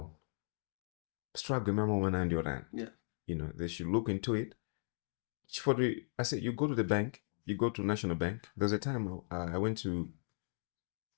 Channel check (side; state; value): right; silent; digital silence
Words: Struggle remember when I'm your Yeah. You know, they should look into it. I said, you go to the bank, you go to National Bank. There's a time I went to